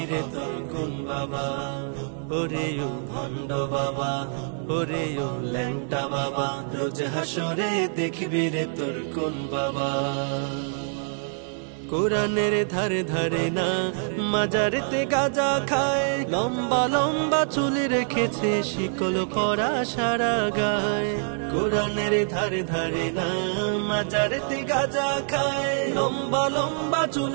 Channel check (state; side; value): silent; left; digital silence